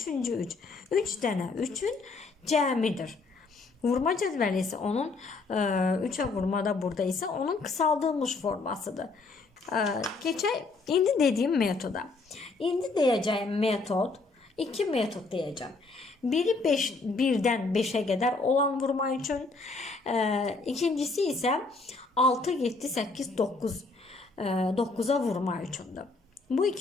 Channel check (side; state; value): right; quieter; 3.8 dB